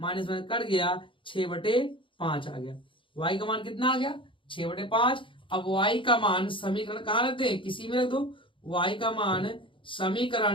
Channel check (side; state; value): right; late; 0.25 ms